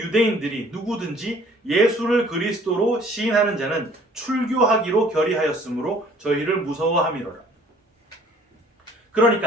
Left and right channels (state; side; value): normal; both; correlation 0.55